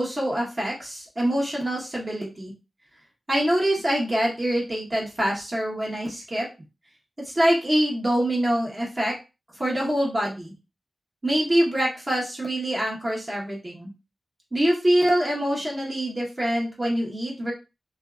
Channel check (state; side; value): normal; both; correlation 0.96